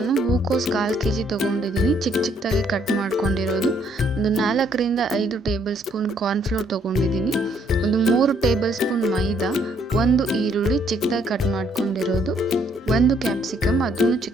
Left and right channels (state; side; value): normal; both; correlation 0.67